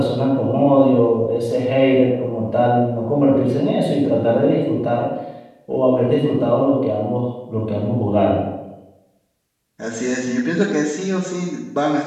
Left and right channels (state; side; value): identical; both; correlation 1.00